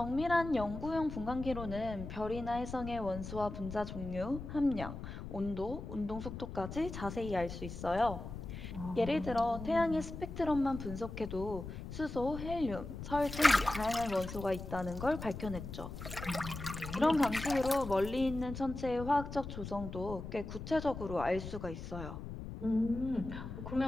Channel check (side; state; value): left; noise; rumble, 9 dB below the sound